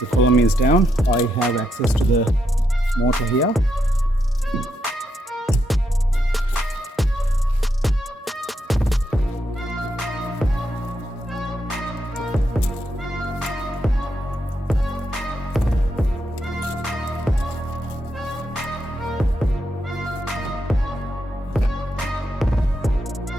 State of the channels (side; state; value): both; normal; correlation 0.81